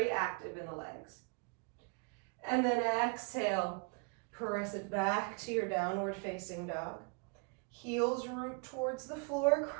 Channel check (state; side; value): quieter; left; 33.3 dB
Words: active in the legs. And then exhale, press it back to your downward facing dog. Heels root towards the floor,